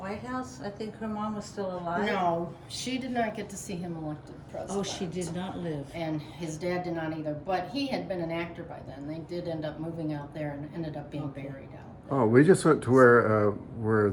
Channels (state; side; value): identical; both; correlation 1.00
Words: House? I think her mom was still alive. No, she did not get to see him elected president. Oh, she did not live. And his dad did not either. But he had been an actor by then. They did end up moving out there and ended up being buried out there. Oh, we just went to where